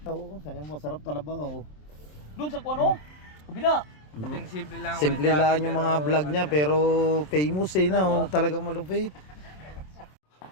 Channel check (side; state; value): right; late; 27 ms